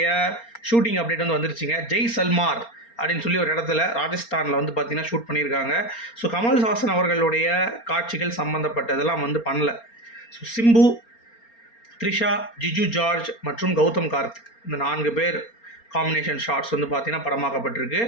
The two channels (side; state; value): right; late; 4.3 ms